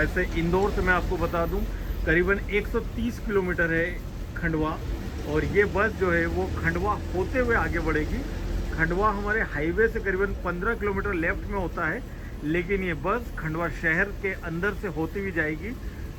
इंदौर से मैं आपको बता दूं करीबन 130 किलोमीटर है खंडवा। और ये बस जो है वो खंडवा होते हुए आगे बढ़ेगी। खंडवा हमारे हाईवे से करीबन 15 किलोमीटर लेफ्ट में होता है, लेकिन ये बस खंडवा शहर के अंदर से होती हुई जाएगी।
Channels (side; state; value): both; identical; correlation 1.00